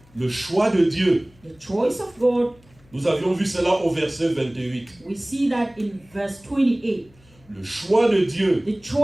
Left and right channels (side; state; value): left; noise; hum, 29 dB below the sound